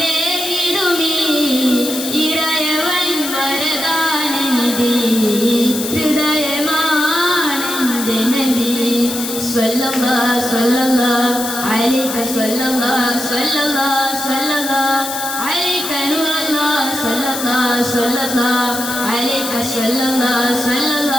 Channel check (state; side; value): noise; left; hiss, 6 dB below the sound